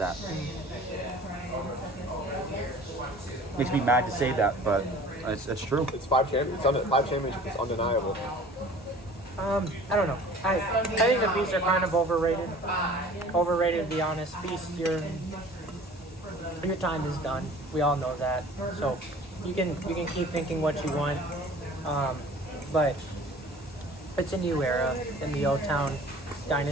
Makes me mad to say that, but it's true. It's 5 championships. 5 championships is undeniable. I don't know. I think the Beasts are kind of overrated. Overrated, to be honest. Beast, your time is done. We all know that. So you can keep thinking what you want, but it's a new era in the O-Town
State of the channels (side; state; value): both; normal; correlation 0.46